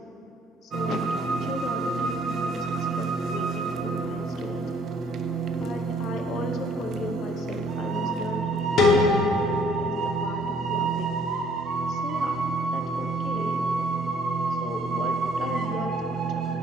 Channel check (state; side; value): normal; both; correlation 0.61